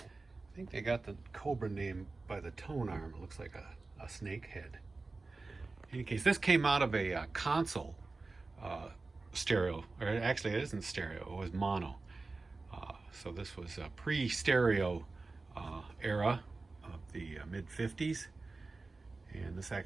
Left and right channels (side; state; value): left; quieter; 3.6 dB